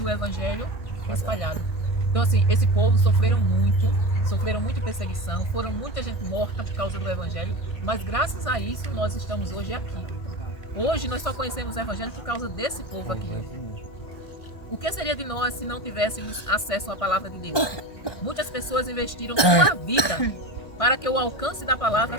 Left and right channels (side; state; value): right; late; 1.5 ms